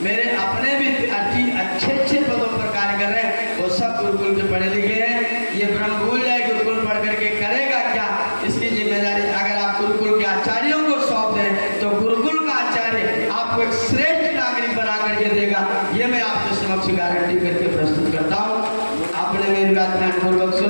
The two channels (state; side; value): inverted; both; correlation -1.00